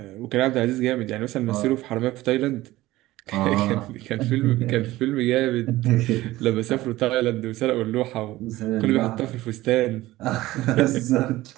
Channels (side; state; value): left; quieter; 17.2 dB